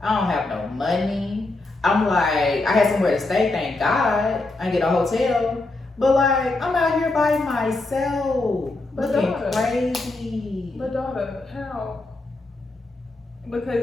I don't have no money. I'm like, I had somewhere to stay, thank God. I get a hotel. But like, I'm out here by myself. Looking crazy. But daughter, how?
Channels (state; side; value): quieter; right; 3.1 dB